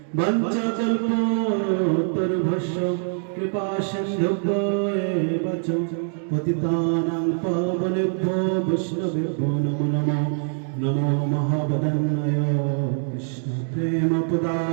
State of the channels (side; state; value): left; silent; digital silence